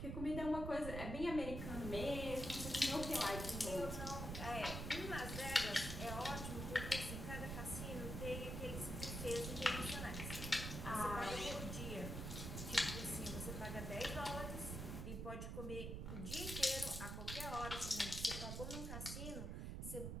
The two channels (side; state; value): right; noise; rumble, 4 dB below the sound